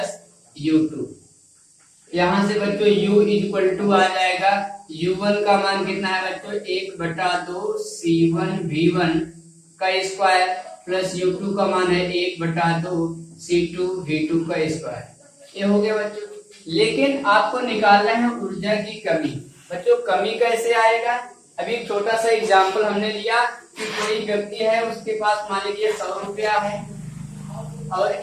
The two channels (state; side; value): identical; both; correlation 1.00